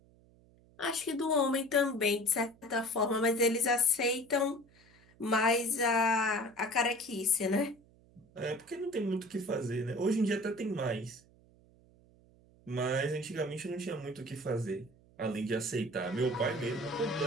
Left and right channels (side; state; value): right; noise; hum, 28 dB below the sound